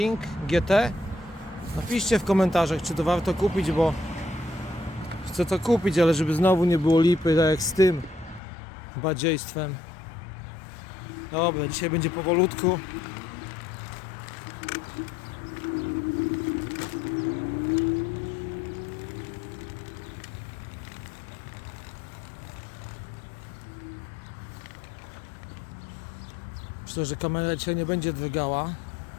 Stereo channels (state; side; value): drops out; right; at 8.4 s